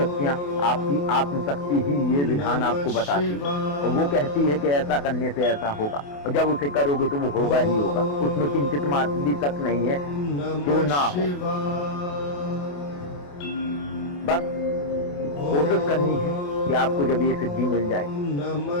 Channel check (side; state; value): right; late; 28 ms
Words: आपकी आत्मशक्ति ही ये विधान आपको बताती है और वो कहती है कि ऐसा करने से ऐसा होगा, और जब उसे करोगे तो वो होगा ही होगा। उसमें किंचित मात्र भी शक नहीं है कि वो ना हो। बस कोशिश करनी है कि आपको जब ये सिद्धि मिल जाए,